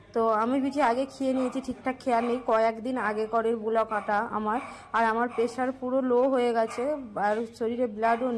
তো আমি বিচি আগে খেয়ে নিয়েছি, ঠিকঠাক খেয়াল নেই, কয়েকদিন আগে করের ব্লক আটা আমার। আর আমার প্রেশার পুরো লো হয়ে গেছে, আর শরীরে ব্লাডও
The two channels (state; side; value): identical; both; correlation 1.00